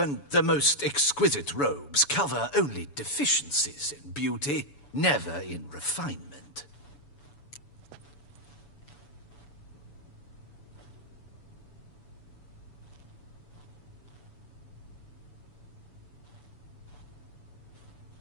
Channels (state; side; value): late; right; 7.0 ms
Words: the most exquisite robes cover only deficiencies in beauty, never in refinement.